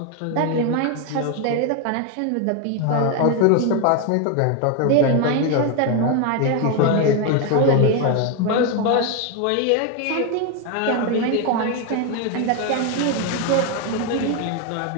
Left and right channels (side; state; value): both; different; correlation 0.01